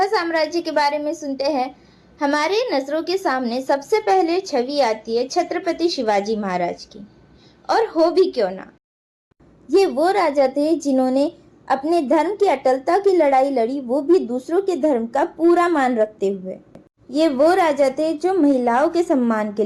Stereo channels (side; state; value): both; identical; correlation 1.00